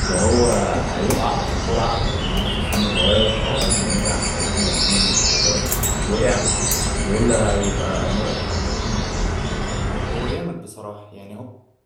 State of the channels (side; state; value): both; identical; correlation 1.00